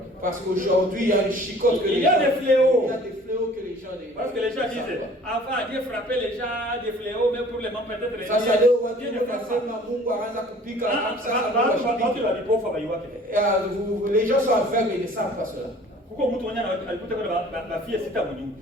Parce qu'aujourd'hui, il y a une chicote que les gens... Il y a des fléaux que les gens... Parce que les gens disent, avant Dieu frappait les gens des fléaux, mais pour les membres peut-être les gens... Les gens sont aveugles et ne savent pas cela.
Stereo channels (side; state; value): both; normal; correlation 0.50